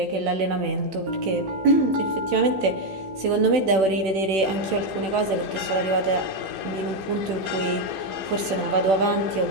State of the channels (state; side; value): late; left; 16 ms